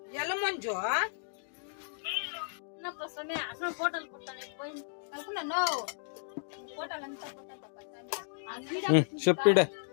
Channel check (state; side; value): silent; right; digital silence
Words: ಎಲ್ಲ ಮಂಜು చెప్పిడే